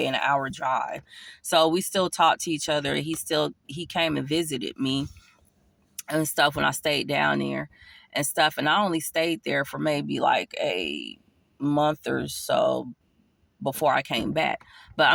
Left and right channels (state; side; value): identical; both; correlation 1.00